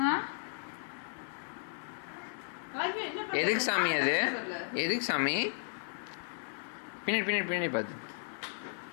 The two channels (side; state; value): right; silent; digital silence